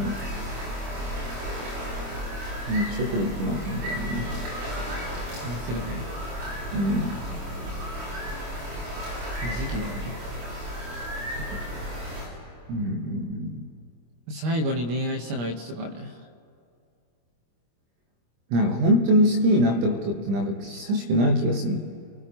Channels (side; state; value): left; late; 25 ms